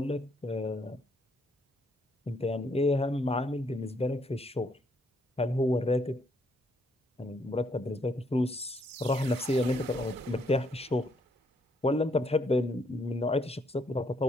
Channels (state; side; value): normal; both; correlation 0.71